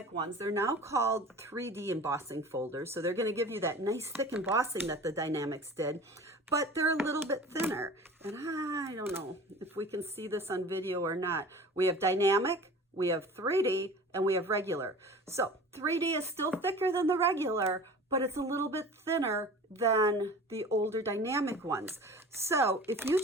ones, they're now called 3D embossing folders. So they're going to give you that nice thick embossing that the dynamics did, but they're a little bit thinner. And I don't know if we can see this on video or not. We have dynamic, we have 3D, and we have regular. So 3D is still thicker than the regular, but it's a little bit thinner than the older dynamic ones. So if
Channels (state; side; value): normal; both; correlation 0.40